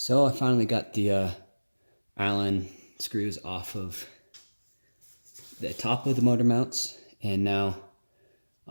I finally got the Allen screws off of the top of the motor mounts, and now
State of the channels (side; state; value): both; inverted; correlation -1.00